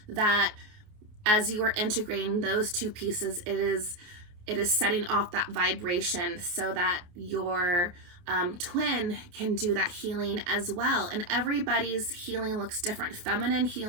that as you are integrating those two pieces, it is setting off that vibration so that your twin can do that healing as well. And everybody's healing looks different. Feminine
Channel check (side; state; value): left; late; 28 ms